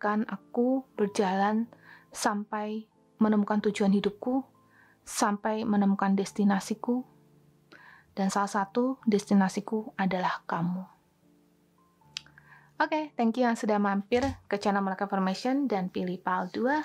aku berjalan sampai menemukan tujuan hidupku, sampai menemukan destinasiku, dan salah satu destinasiku adalah kamu. Oke, thank you yang sudah mampir ke channel Melaka Formation dan pilih PAL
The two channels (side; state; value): both; identical; correlation 1.00